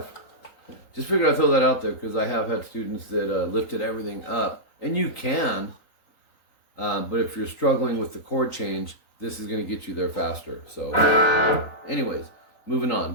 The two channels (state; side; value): late; right; 3.9 ms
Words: Just figured I'd throw that out there because I have had students that lifted everything up. And you can, but if you're struggling with the chord change, this is going to get you there faster. So anyways, moving